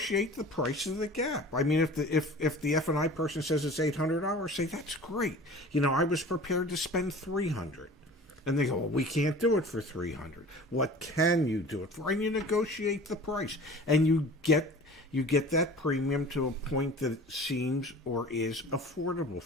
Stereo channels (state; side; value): normal; both; correlation 0.42